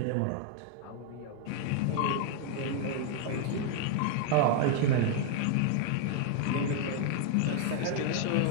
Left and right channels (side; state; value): both; different; correlation 0.00